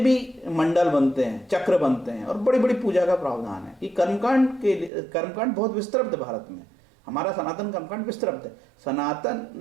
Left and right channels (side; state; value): left; drops out; at 4.9 s